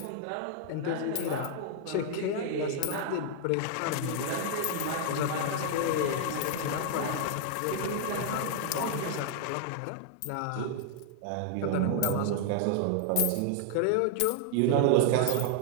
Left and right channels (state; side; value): different; both; correlation 0.00